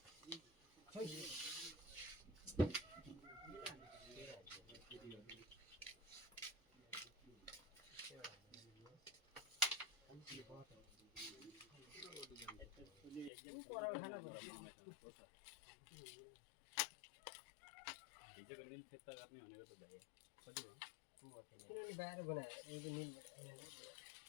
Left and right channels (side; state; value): right; drops out; at 13.3 s